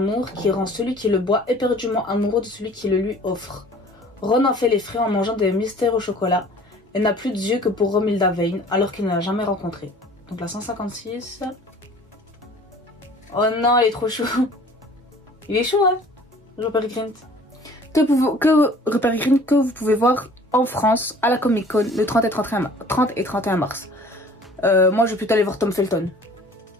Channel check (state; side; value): normal; both; correlation 0.49